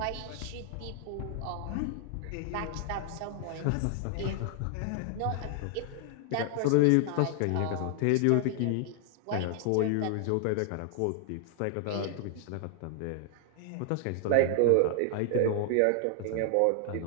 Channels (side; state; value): both; different; correlation 0.00